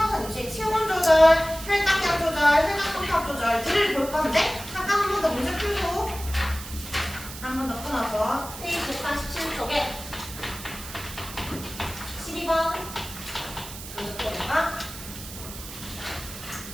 유지의 체온 조절, 혈당량 조절, 혈당 조절들을 볼 건데 잠깐 한 번 더 문제 풀고 한 번 더 끊어서 페이지 147쪽에 12번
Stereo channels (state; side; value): noise; right; hiss, 12 dB below the sound